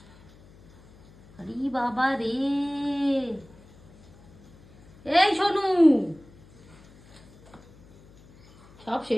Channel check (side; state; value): left; noise; hum, 25 dB below the sound